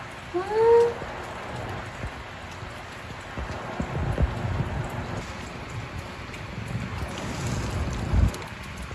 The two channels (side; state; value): both; identical; correlation 1.00